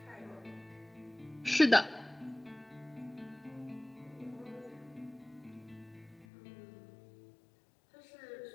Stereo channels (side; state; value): right; drops out; at 6.2 s